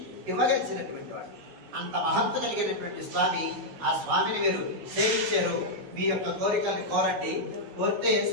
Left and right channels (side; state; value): left; late; 16 ms